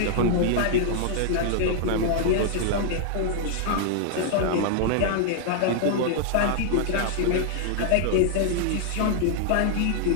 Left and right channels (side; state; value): both; different; correlation -0.01